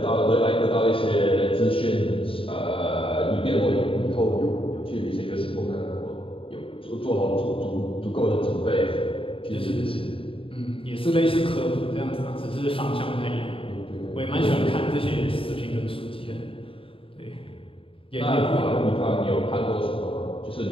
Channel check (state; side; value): late; right; 0.26 ms